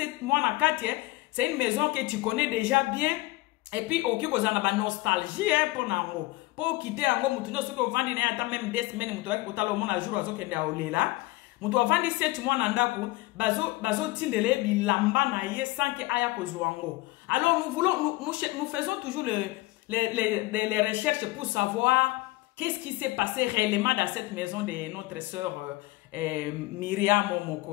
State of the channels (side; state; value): right; quieter; 20.4 dB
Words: mois na kati c'est une maison que tu connais déjà bien. Et puis, ok, vous avez une nostalgie pour nango. Pour quitter ango, mutu no soki ovandi na ata même 2 semaines mutu waki kutala omona jour azo kende aolela. Mutu ovandi 7 mois na ndaku, bazo tindele bilamba na ye sans que aya kozwango. Alors nous faisons toujours les recherches pour savoir qu'est-ce qui s'est passé réellement dans cette maison de notre sœur Miriame